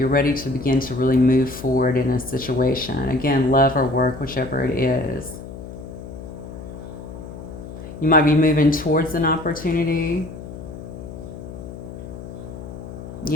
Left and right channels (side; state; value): left; noise; hum, 12 dB below the sound